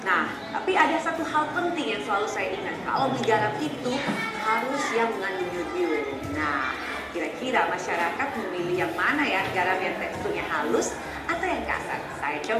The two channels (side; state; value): both; identical; correlation 1.00